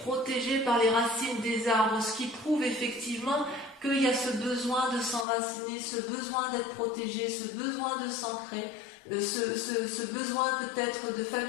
par les racines des arbres, ce qui prouve effectivement qu'il y a ce besoin de s'enraciner, ce besoin d'être protégé, ce besoin de s'ancrer, ce besoin peut-être de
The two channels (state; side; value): drops out; right; at 5.2 s